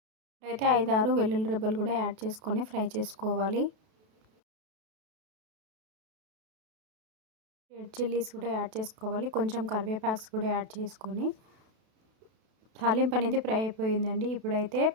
అయితే 5-6 వెల్లుల్లి రెబ్బలు కూడా యాడ్ చేసుకొని ఫ్రై చేసుకోవాలి. రెడ్ చిల్లీస్ కూడా యాడ్ చేసుకోవాలి. కొంచెం కరివేపాక్స్ కూడా యాడ్ చేసుకొని తాలింపు అనేది ఫ్రై అయిపోయిందండి. ఇప్పుడైతే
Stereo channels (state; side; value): late; left; 32 ms